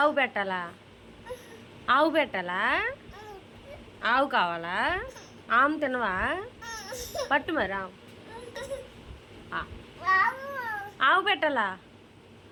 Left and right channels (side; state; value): both; identical; correlation 1.00